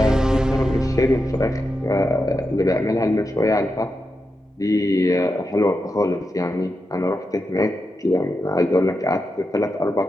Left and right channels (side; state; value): both; normal; correlation 0.88